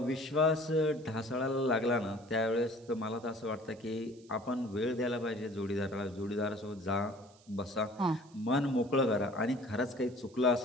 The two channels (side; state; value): right; noise; hiss, 28 dB below the sound